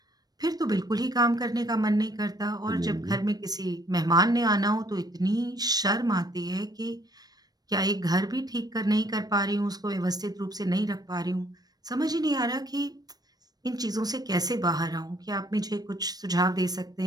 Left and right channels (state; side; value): late; left; 0.19 ms